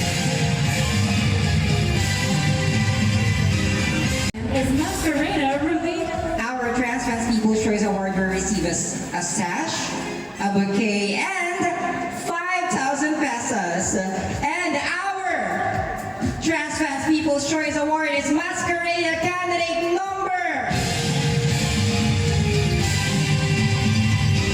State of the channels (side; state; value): both; identical; correlation 1.00